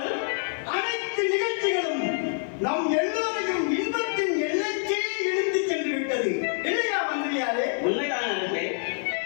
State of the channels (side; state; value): right; silent; 61 dB below the other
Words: அனைத்து நிகழ்ச்சிகளும் நம் எல்லோரையும் இன்பத்தின் எல்லைக்கே இழுத்து சென்று விட்டது இல்லையா மந்திரியாரே? உண்மைதான்.